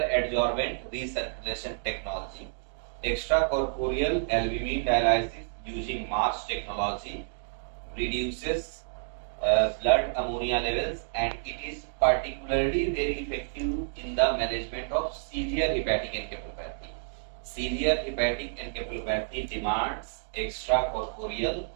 adsorbent recirculation technology. Extracorporeal albumin dialysis using MARS technology reduces blood ammonia levels, and it is particularly very effective in the management of severe hepatic encephalopathy. Severe hepatic encephalopathy demands extracorporeal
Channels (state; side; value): silent; left; digital silence